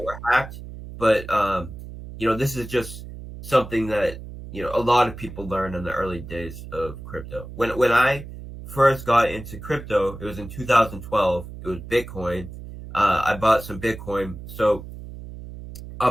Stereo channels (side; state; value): right; noise; hum, 12 dB below the sound